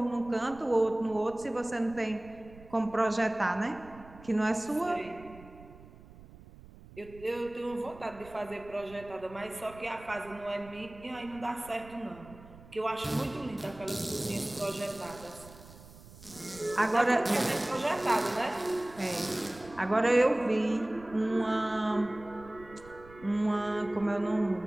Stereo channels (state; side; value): noise; right; rumble, 20 dB below the sound